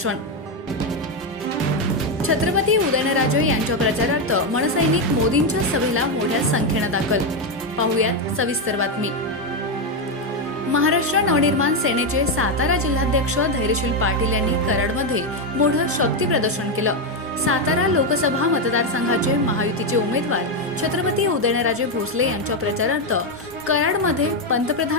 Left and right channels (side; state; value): both; normal; correlation 0.06